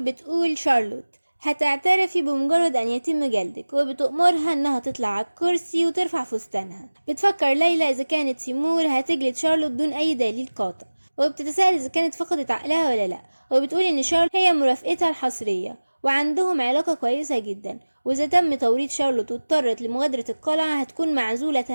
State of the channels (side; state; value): both; inverted; correlation -1.00